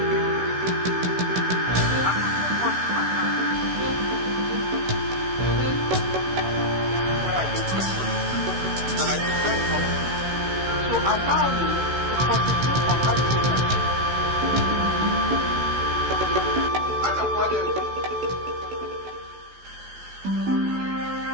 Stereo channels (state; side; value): late; left; 16 ms